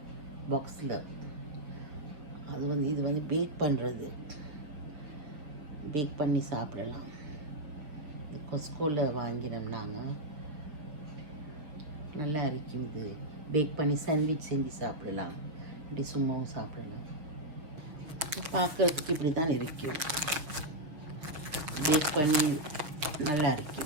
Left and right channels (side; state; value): left; late; 6.5 ms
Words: பாக்ஸில். இது வந்து பேக் பண்ணி சாப்பிடலாம். கொஸ்கோவில் வாங்கினோம் நாங்கள். நல்லா இருக்கும். இது பேக் பண்ணி சாண்ட்விச் செஞ்சு சாப்பிடலாம், இப்படி சும்மாவும் சாப்பிடலாம். பார்க்குறதுக்கு இப்படி தான் இருக்கும். பேக் பண்ணி நல்லா